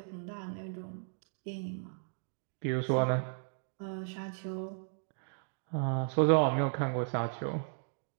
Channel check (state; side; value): silent; left; digital silence